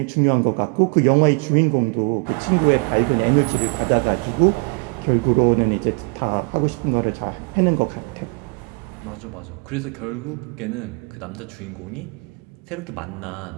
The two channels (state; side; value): quieter; left; 33.5 dB